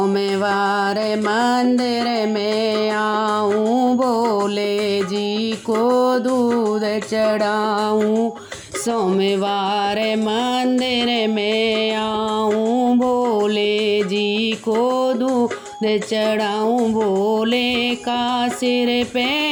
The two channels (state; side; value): identical; both; correlation 1.00